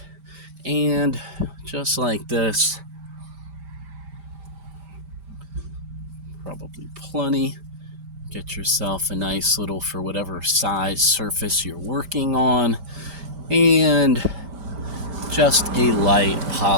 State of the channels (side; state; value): left; late; 5.1 ms